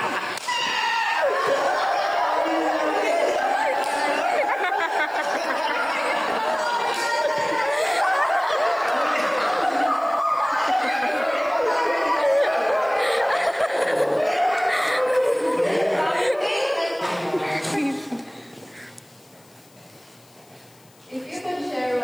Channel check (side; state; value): left; noise; hiss, 30 dB below the sound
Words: If you could share